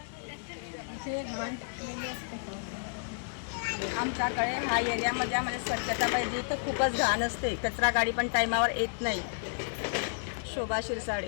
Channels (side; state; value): right; silent; digital silence